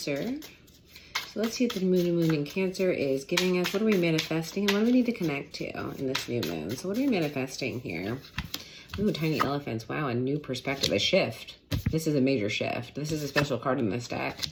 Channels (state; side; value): identical; both; correlation 1.00